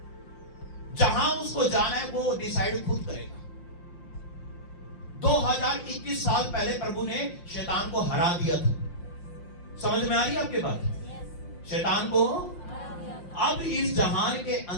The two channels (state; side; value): late; right; 5.7 ms